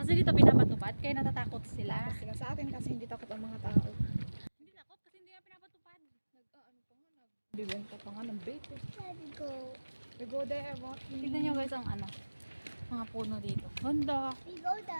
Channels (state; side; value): inverted; both; correlation -1.00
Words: dito pinapatupad, kaya natatakot sila. Tapos sila sa atin kasi hindi takot ang mga tao. Hindi takot kasi hindi nga pinapatupad. Ano pa nga, nagbibenta pa nga ng vape. Let's go. We go there, walking. Tignan nyo guys ang ano, mga puno dito. Ganda. We go